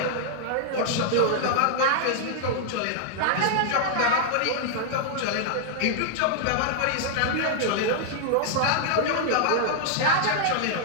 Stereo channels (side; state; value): both; different; correlation -0.01